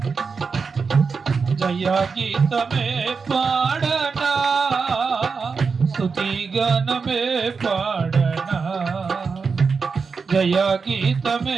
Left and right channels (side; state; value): left; quieter; 5.1 dB